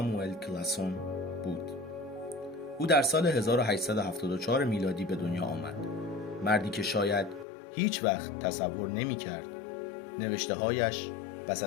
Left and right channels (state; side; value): drops out; right; at 7.5 s